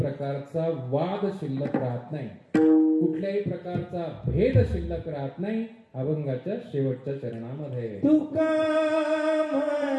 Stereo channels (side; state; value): both; identical; correlation 1.00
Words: वाद शिल्लक राहत नाही, कुठल्याही प्रकारचा भेद शिल्लक राहत नाही. अभंगाच्या शेवटच्या चरणामध्ये तुका